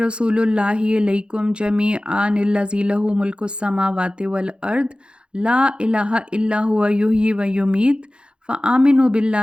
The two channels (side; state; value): left; late; 0.054 ms